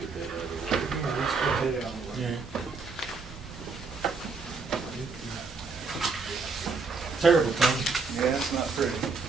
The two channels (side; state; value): left; quieter; 4.5 dB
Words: Get that out of the way. Yeah, let's get that out of the way. Terrible thing. Yeah, it's not pretty.